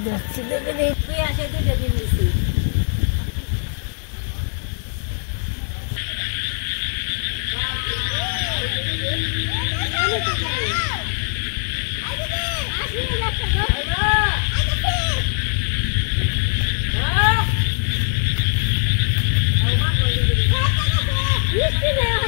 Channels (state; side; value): silent; right; digital silence